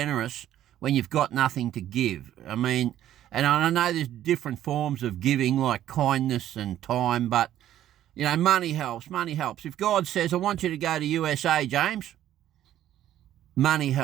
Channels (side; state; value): left; quieter; 12.2 dB